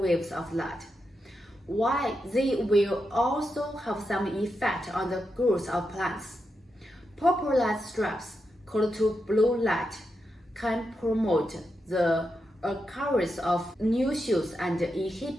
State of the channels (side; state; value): both; normal; correlation 0.86